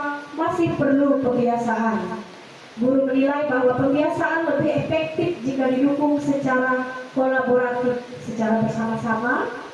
masih perlu pembiasaan. Guru menilai bahwa pembiasaan lebih efektif jika didukung secara kolaboratif, secara bersama-sama.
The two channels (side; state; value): both; identical; correlation 1.00